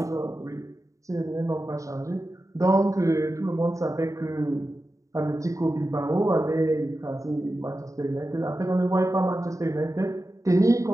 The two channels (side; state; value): left; late; 0.16 ms